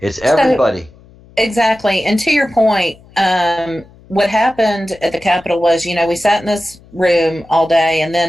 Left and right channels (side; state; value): left; noise; hum, 26 dB below the sound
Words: It's everybody. So, exactly. And to your point, what happened at the Capitol was, we sat in this room all day, and